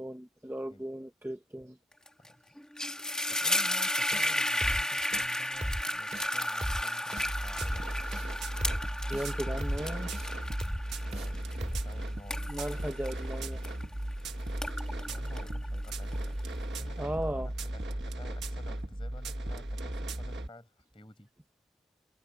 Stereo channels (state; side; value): normal; both; correlation 0.77